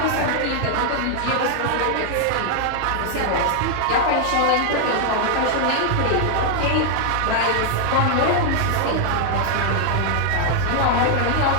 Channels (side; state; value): both; different; correlation 0.00